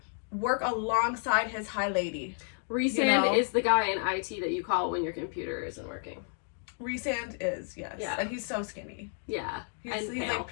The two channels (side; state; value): right; silent; 57 dB below the other